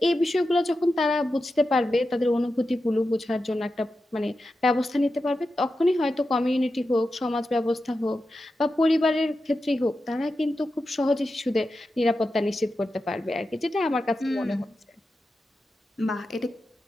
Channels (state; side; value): normal; both; correlation 0.91